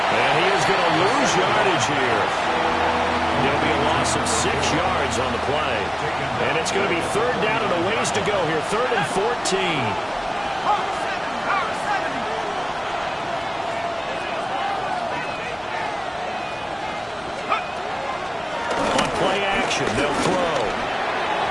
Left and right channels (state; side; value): identical; both; correlation 1.00